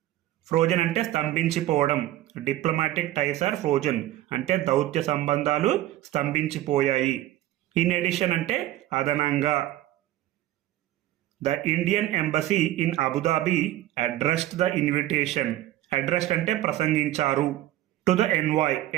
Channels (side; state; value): left; quieter; 14.4 dB